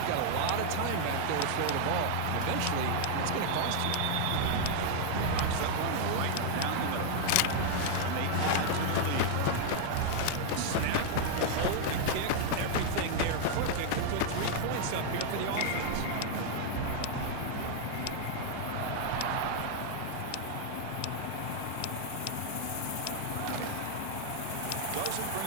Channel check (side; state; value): both; different; correlation 0.00